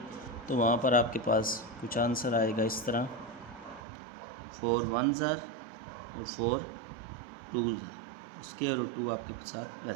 तो वहाँ पर आपके पास कुछ आंसर आएगा इस तरह, 4 1 ज़ार और 4 2 ज़ार, स्क्वायर रूट 2 आपके साथ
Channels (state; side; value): drops out; left; at 3.8 s